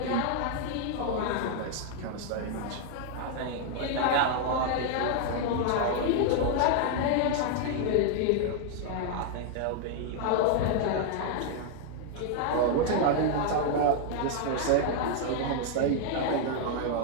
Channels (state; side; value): different; both; correlation 0.00